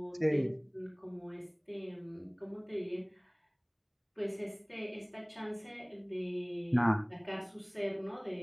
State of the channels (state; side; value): identical; both; correlation 1.00